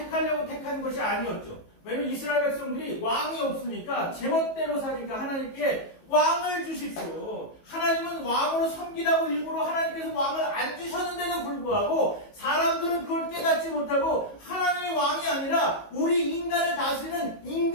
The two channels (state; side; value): late; right; 19 ms